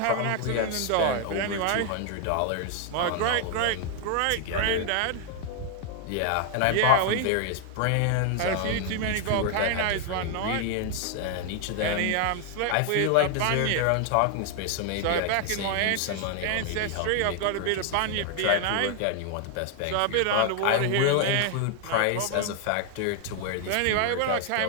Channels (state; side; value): different; both; correlation 0.00